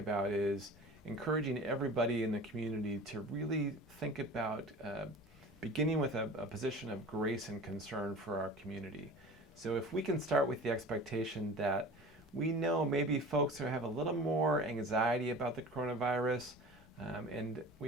is encouraging everybody in the community to really think about beginning with a position of grace and concern for our community. So if we can start with the expectation that we know maybe folks who have a little more anxiety about the coronavirus, and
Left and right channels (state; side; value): normal; both; correlation 0.39